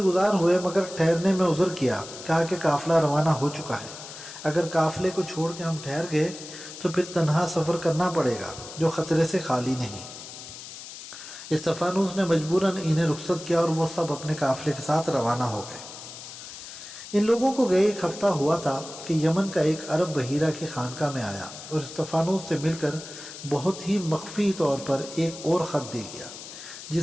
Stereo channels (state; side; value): noise; left; hiss, 13 dB below the sound